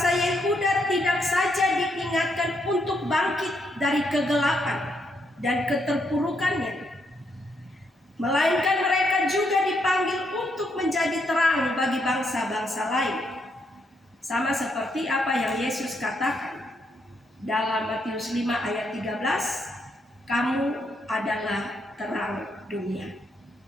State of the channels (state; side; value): normal; both; correlation 0.77